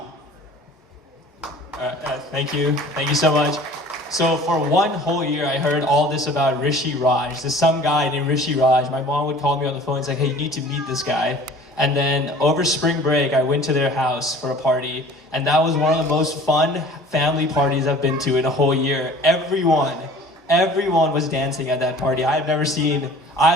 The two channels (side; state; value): both; normal; correlation 0.47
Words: Thank you. Thank you so much. So for one whole year, I heard all this about Rishi Raj. There's some guy named Rishi Raj. My mom would call me on the phone and say, hey, you need to meet this guy. And then over spring break, I went to their house for a party. And that was one of the most fun family parties I've been to in a whole year. Everyone was dancing at that party. I've never